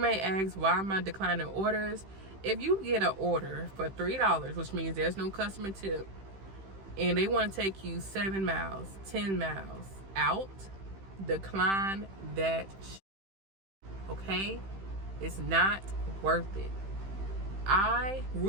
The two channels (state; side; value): late; left; 15 ms